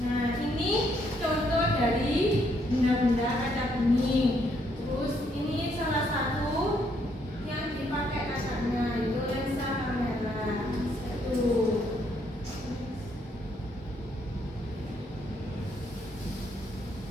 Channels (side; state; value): both; normal; correlation 0.72